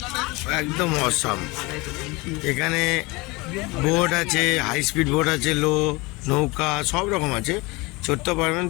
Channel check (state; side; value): quieter; right; 24.6 dB